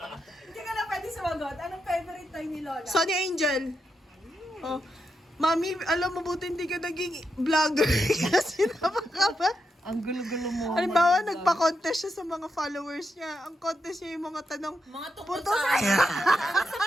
Hindi ka na pwede sumagot. Anong favorite toy ni Lola? Sonny Angel. Oh. Mami, alam mo buti hindi ka naging vlogger kasi napaka Ang gulo-gulo mo. Halimbawa, nagpa-contest siya sa mga followers niya. Ang contest niya yung mga tanong, Mga tungkol Puto sa ano? Tungkol sa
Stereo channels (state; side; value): normal; both; correlation 0.84